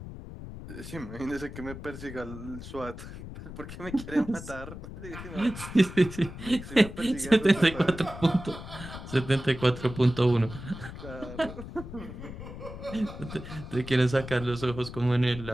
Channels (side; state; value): left; noise; rumble, 11 dB below the sound